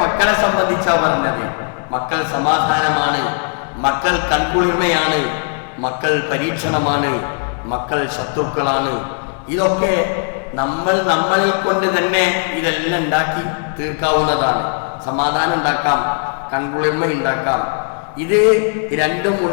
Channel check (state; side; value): silent; right; 55 dB below the other